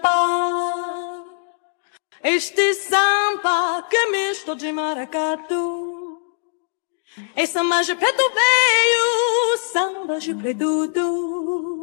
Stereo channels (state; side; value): silent; right; digital silence